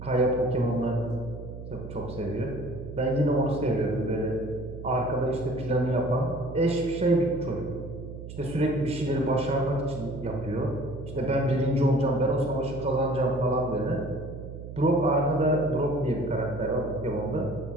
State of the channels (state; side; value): noise; right; hum, 11 dB below the sound